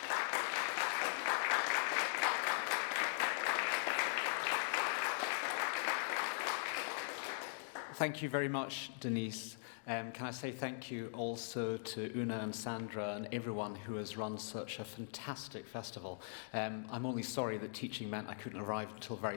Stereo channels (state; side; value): silent; right; digital silence